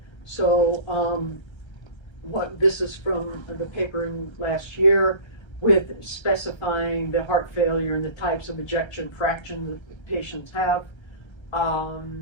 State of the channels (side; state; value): right; late; 1.3 ms